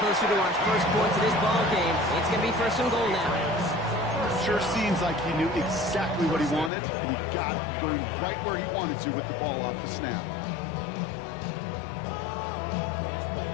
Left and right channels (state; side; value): drops out; right; at 6.7 s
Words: to our first points of this ball game. It's going to be 1st and goal now. Sure seems like he knew exactly what he wanted, and he got it going right where he wanted to with the ball off the snap.